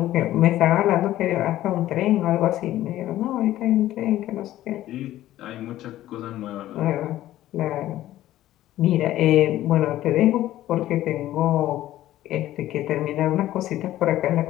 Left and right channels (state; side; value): quieter; right; 14.2 dB